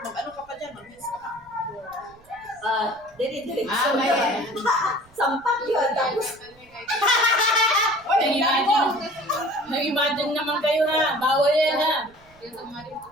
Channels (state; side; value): noise; right; rumble, 28 dB below the sound